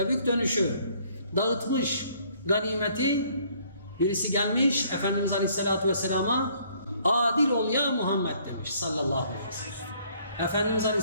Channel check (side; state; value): both; inverted; correlation -0.62